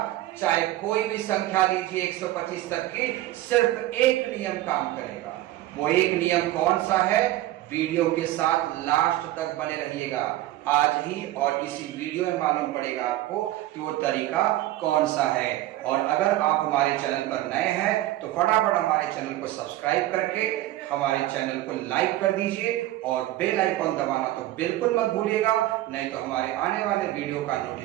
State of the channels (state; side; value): quieter; left; 15.3 dB